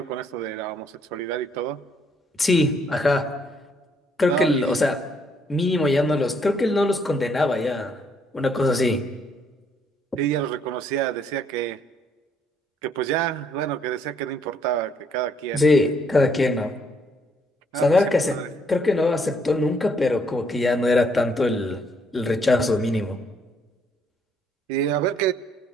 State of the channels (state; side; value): normal; both; correlation 0.69